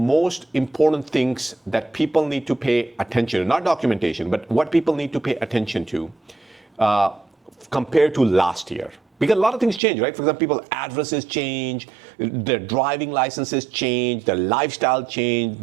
important things that people need to pay attention to, not documentation, but what people need to pay attention to compared to last year. Because a lot of things change, right? For example, people's addresses change, their driving licenses change, their lifestyle change,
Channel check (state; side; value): drops out; left; at 9.8 s